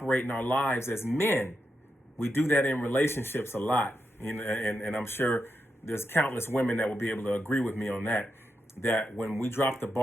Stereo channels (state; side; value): normal; both; correlation 0.85